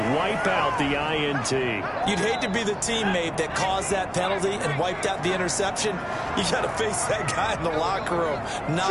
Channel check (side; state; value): both; identical; correlation 1.00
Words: Wipe out the INT. You'd hate to be the teammate that caused that penalty and wiped out the interception. You got to face that guy in the locker room.